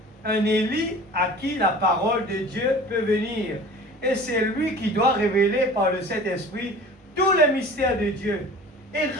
un Élie à qui la parole de Dieu peut venir. Et c'est lui qui doit révéler par le Saint-Esprit tous les mystères de Dieu et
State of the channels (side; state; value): both; normal; correlation 0.41